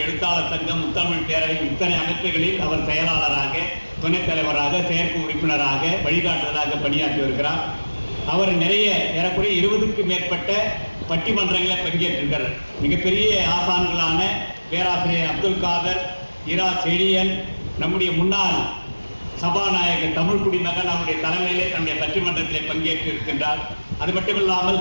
எழுத்தாளர் சங்கம், முத்தமிழ் பேரவை, இத்தனை அமைப்புகளில் அவர் செயலாளராக, துணைத் தலைவராக, செயற்கை உறுப்பினராக, வழிகாட்டுதலாக பணியாற்றி வருகிறார். அவர் நிறைய ஏறக்குறைய 20க்கும் மேற்பட்ட பட்டிமன்றங்களை பங்கேற்றிருக்கிறார். மிகப்பெரிய ஆசான்களான பேராசிரியர் அப்துல் காதர், இரா செழியன், நம்முடைய முன்னாள் சபாநாயகர் தமிழ் குடிமகன் அவருடைய தலைமையிலே தன்னுடைய பட்டிமன்றத்திலே பங்கேற்று இருக்கின்றார். அது மட்டுமில்லாமல்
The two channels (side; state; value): both; inverted; correlation -1.00